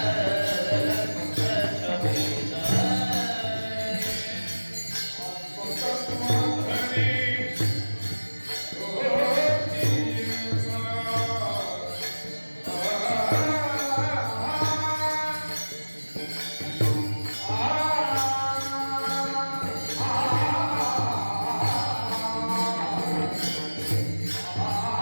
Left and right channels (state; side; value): inverted; both; correlation -1.00